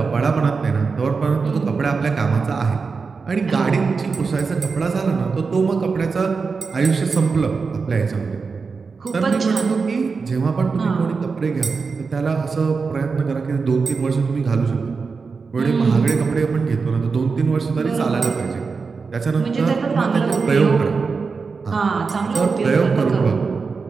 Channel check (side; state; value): left; quieter; 4.8 dB